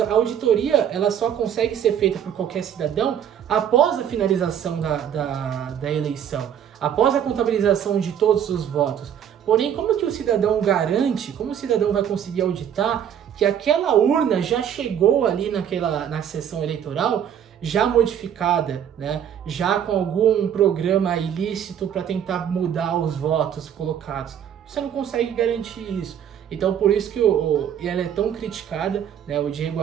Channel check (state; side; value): quieter; left; 9.2 dB